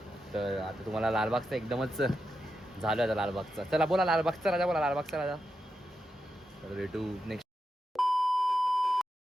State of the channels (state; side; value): normal; both; correlation 0.87